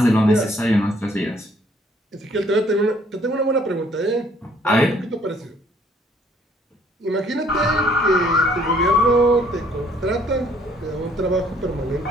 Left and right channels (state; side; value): normal; both; correlation 0.62